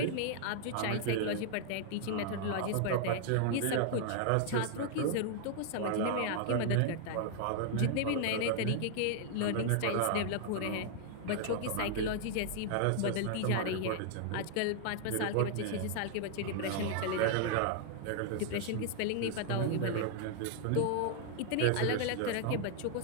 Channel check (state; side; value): different; both; correlation 0.00